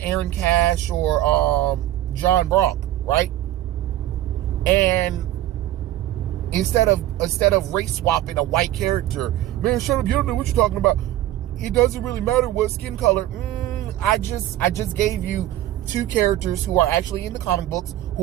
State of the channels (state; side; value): quieter; left; 13.9 dB